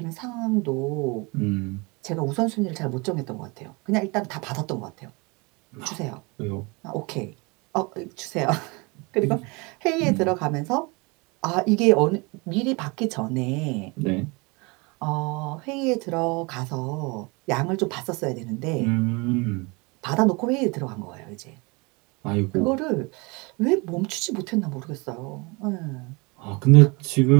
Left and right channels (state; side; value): quieter; left; 27.6 dB